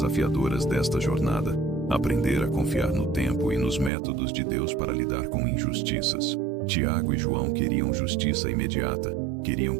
desta jornada: aprender a confiar no tempo e nos métodos de Deus para lidar com injustiças. Tiago e João queriam justiça imediata, queriam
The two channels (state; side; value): drops out; left; at 3.9 s